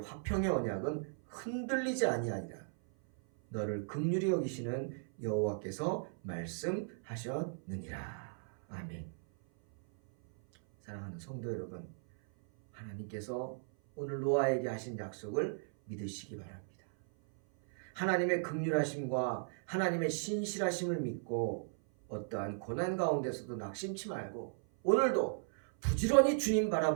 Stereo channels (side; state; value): left; silent; 54 dB below the other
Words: 화평의 언약은 흔들리지 아니하리라. 너를 긍휼히 여기시는 여호와께서 말씀하셨느니라. 아멘. 사랑하는 성도 여러분, 하나님께서 오늘 노아에게 하신 약속을 믿으시기 바랍니다. 하나님의 긍휼하심과 하나님의 신실하심을 믿고 어떠한 고난 가운데서도 낙심치 말고 오늘도 부지런히 주님